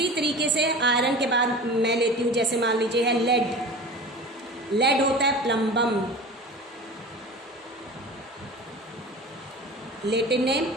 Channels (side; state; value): both; normal; correlation 0.35